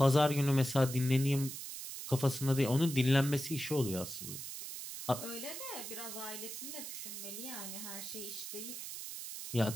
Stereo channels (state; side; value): noise; right; hiss, 8 dB below the sound